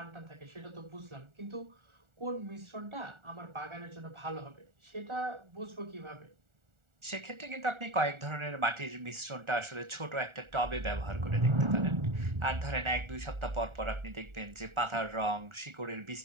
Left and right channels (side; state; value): left; late; 1.4 ms